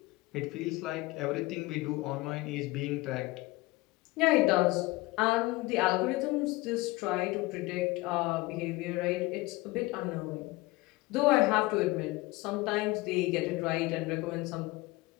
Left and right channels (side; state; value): right; quieter; 21.5 dB